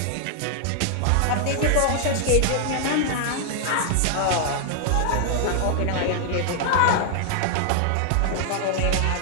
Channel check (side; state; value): both; different; correlation 0.00